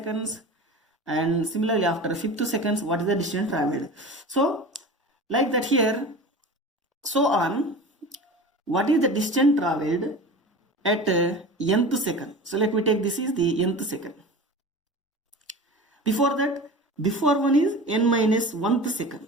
and similarly after 5th seconds, what is the distance traveled? So like that here, so on, what is the distance traveled at nth second? So let me take this is the nth second. Before that, before one is n minus 1th second.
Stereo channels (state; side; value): normal; both; correlation 0.34